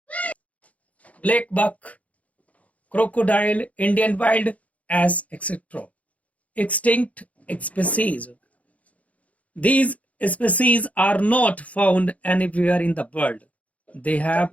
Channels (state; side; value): late; right; 0.068 ms